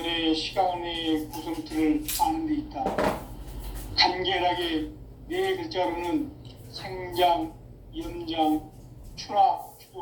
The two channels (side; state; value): both; identical; correlation 1.00